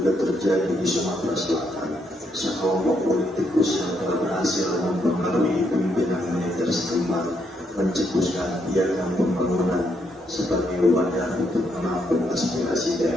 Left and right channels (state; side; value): normal; both; correlation 0.76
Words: terjadi di Sumatera Selatan. Sekelompok politikus yang telah berhasil mempengaruhi pimpinan militer setempat mencetuskan piagam pembangunan sebagai wadah untuk menampung aspirasi